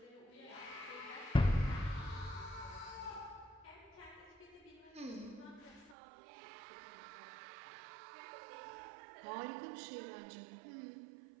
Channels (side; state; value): left; drops out; at 6.0 s